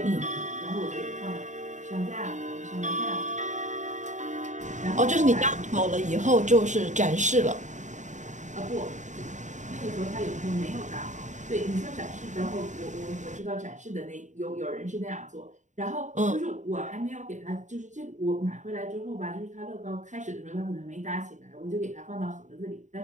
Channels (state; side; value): late; left; 0.35 ms